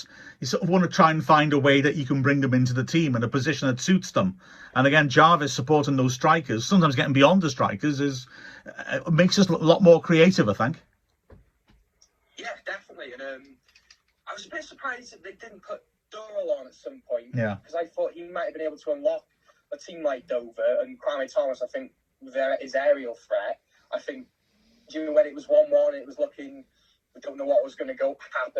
you sort of want to try and find a way that you can bring them into the team in a position that suits them. And again, Jarvis supporting those strikers, sometimes getting beyond the strikers, makes us a lot more creative, I think. Yeah, definitely. And I was a bit surprised that they didn't put Doyle on at some point. Yeah. Because I thought he might have been able to unlock a team like Dover, and Kwame Thomas, I think, his aerial threat. I think when it was 1-1, it was looking, we don't know what was going to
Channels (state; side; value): identical; both; correlation 1.00